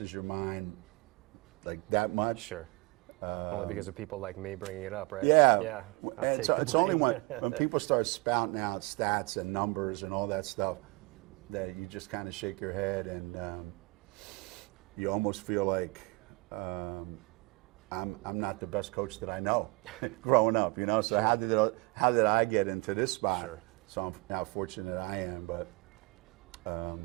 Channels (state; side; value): quieter; left; 26.9 dB